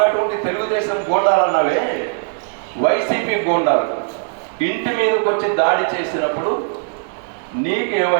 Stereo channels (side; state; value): left; silent; 67 dB below the other